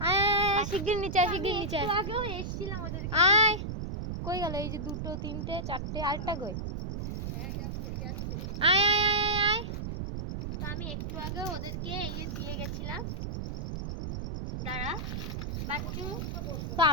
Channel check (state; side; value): noise; right; rumble, 4 dB below the sound